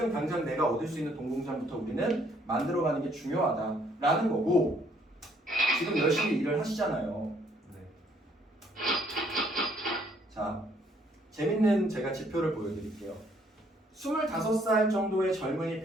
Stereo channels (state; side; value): normal; both; correlation 0.66